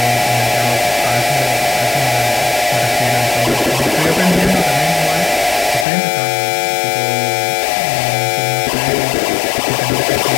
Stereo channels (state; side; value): drops out; right; at 5.9 s